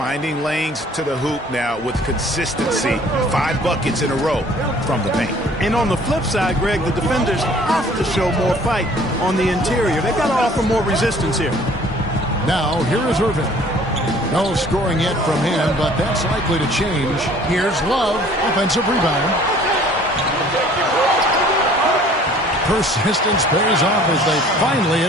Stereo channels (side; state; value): both; normal; correlation 0.53